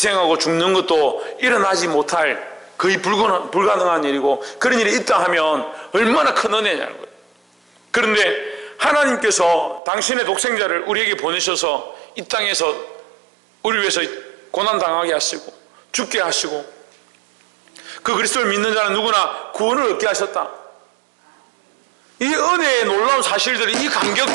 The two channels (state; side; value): drops out; left; at 9.8 s